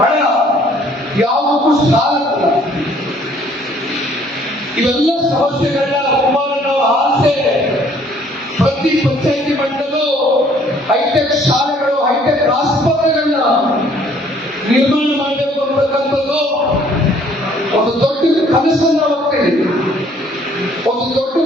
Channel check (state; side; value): normal; both; correlation 0.60